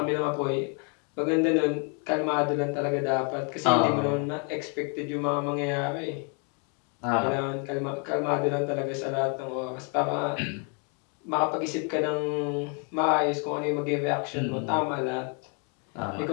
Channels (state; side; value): quieter; right; 38.3 dB